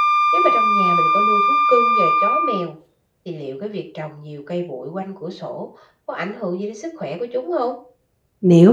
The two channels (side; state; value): both; identical; correlation 1.00